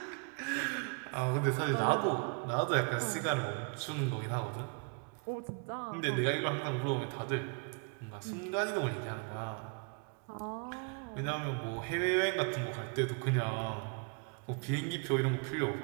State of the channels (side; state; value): left; quieter; 35.4 dB